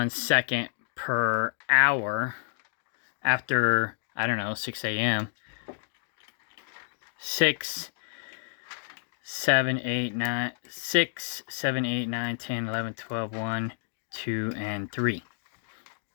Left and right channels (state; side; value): silent; right; digital silence